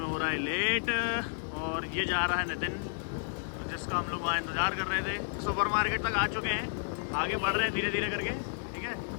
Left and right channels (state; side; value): silent; right; digital silence